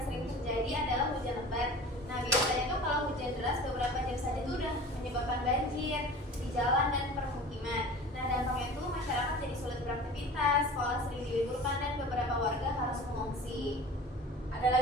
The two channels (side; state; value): both; normal; correlation 0.39